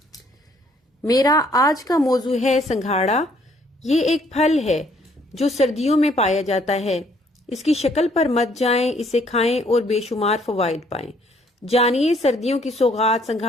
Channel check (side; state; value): both; normal; correlation 0.64